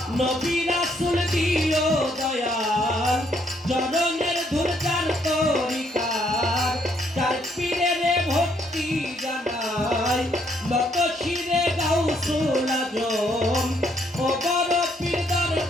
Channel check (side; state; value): both; normal; correlation 0.70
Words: নবী রাসূল দিও দয়াল চরণের ধুরজার তরিকার চার পীরের ভক্তি জানাই নত শিরে গাউসুল আজম ও বড় পীর